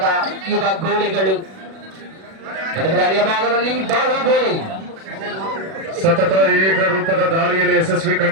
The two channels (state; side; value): late; left; 37 ms